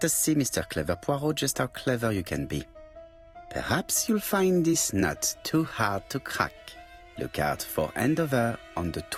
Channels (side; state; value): both; identical; correlation 1.00